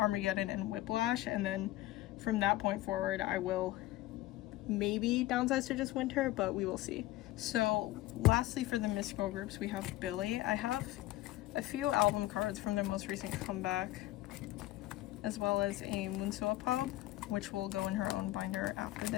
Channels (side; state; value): right; quieter; 16.4 dB